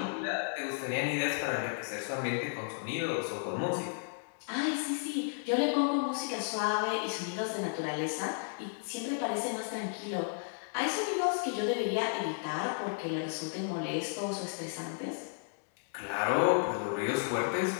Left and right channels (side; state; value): right; silent; digital silence